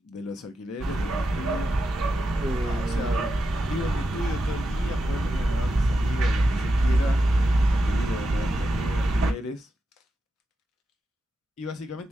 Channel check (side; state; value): both; normal; correlation 0.88